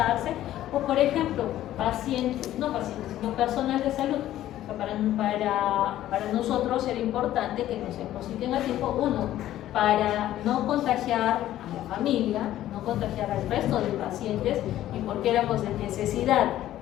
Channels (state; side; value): quieter; right; 13.3 dB